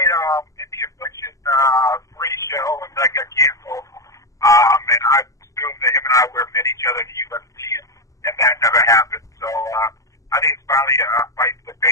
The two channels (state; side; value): late; right; 0.16 ms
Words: in the Affliction 3 show, and that got canceled. And I assumed that him and I would have met each other in the UFC, and that never happened. So I think it's finally a fight for the